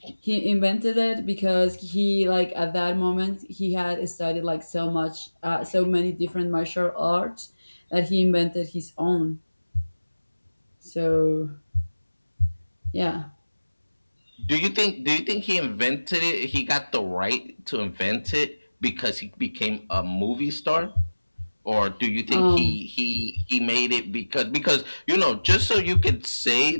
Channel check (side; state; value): both; inverted; correlation -1.00